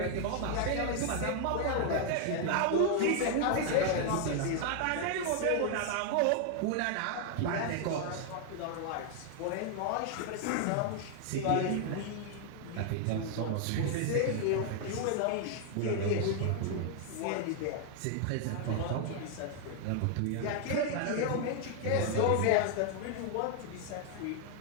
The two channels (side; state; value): both; different; correlation 0.00